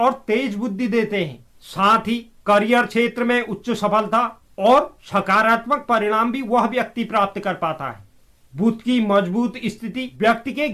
तेज बुद्धि देते हैं। साथ ही करियर क्षेत्र में उच्च सफलता और सकारात्मक परिणाम भी वह व्यक्ति प्राप्त कर पाता है। बुध की मजबूत स्थिति व्यक्ति के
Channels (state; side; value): identical; both; correlation 1.00